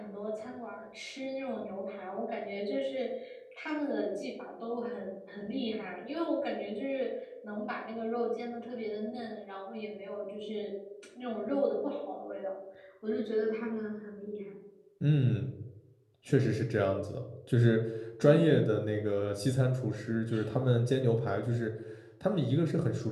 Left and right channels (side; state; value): both; identical; correlation 1.00